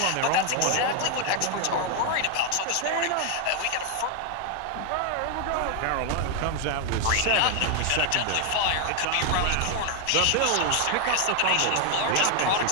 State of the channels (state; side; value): different; both; correlation 0.00